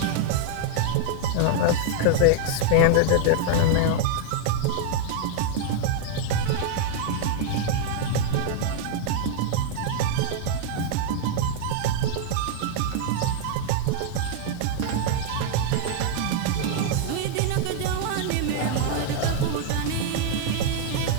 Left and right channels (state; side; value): different; both; correlation 0.00